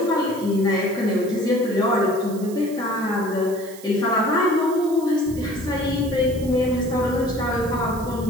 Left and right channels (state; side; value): noise; right; hiss, 18 dB below the sound